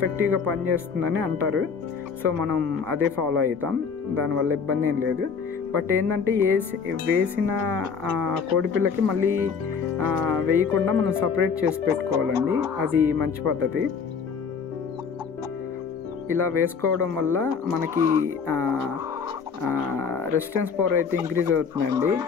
పనిచేస్తుందని అంటారు. సో మనం అదే ఫాలో అవుతాం, దానివల్ల ఇబ్బంది ఏం లేదు. బట్ ఏంటంటే వేసిన కోడిపిల్లకి మళ్ళీ వేయకుండా మనం సపరేట్ చేసి పెట్టుకోవాలండి, అది మంచి పద్ధతి. ఇలా వేసుకోవడం వల్ల మనకి రెసిస్టెన్స్ పవర్ అయితే ఇంక్రీజ్ అవుతుందండి.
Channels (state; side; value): quieter; right; 5.9 dB